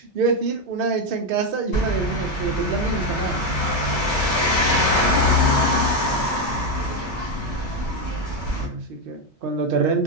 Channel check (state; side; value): normal; both; correlation 0.07